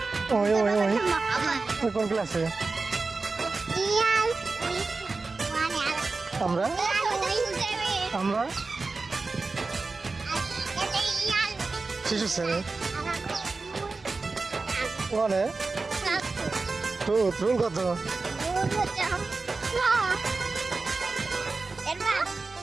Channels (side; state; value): left; quieter; 3.8 dB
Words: ওই ওই ওই ওই কোন ক্লাসে? আমরা আমরা শিশু শ্রেণী। ওখানে রুল কত?